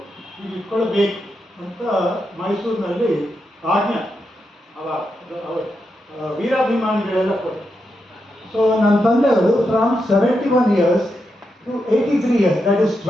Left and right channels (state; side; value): normal; both; correlation 0.85